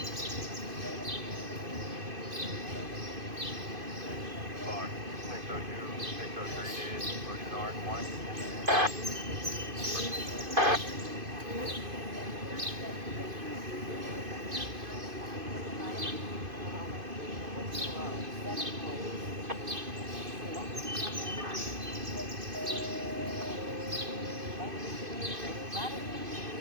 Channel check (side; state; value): left; late; 2.5 ms